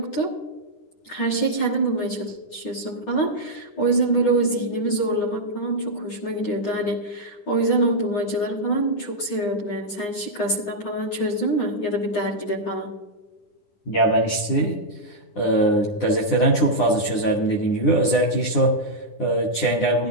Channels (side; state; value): right; late; 9.8 ms